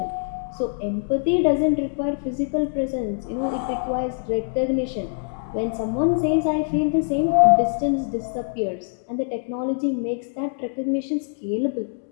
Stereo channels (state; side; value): silent; right; digital silence